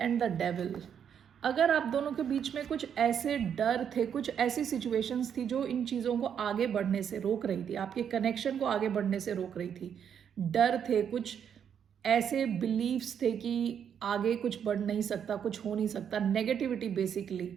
and the devil. अगर आप दोनों के बीच में कुछ ऐसे डर थे, कुछ ऐसी सिचुएशंस थी जो इन चीज़ों को आगे बढ़ने से रोक रही थी, आपके कनेक्शन को आगे बढ़ने से रोक रही थी, डर थे, कुछ ऐसे बिलीव्स थे कि आगे कुछ बढ़ नहीं सकता, कुछ हो नहीं सकता, नेगेटिविटी बेसिकली,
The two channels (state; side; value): quieter; left; 8.2 dB